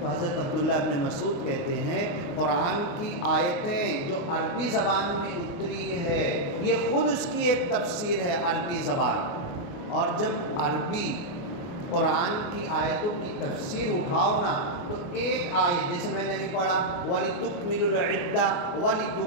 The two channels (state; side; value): late; right; 29 ms